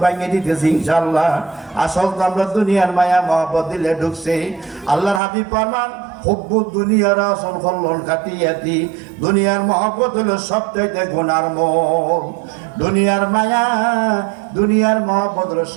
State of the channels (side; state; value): left; drops out; at 5.2 s